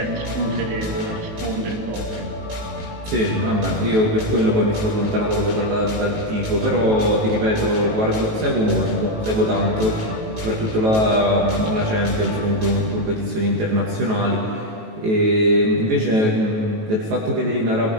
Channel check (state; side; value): late; left; 18 ms